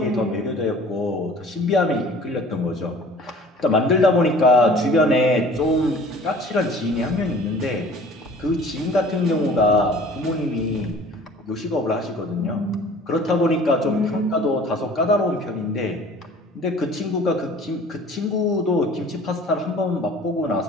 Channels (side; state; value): both; normal; correlation 0.48